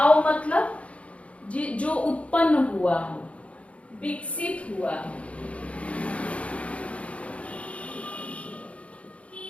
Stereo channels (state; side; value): late; right; 0.063 ms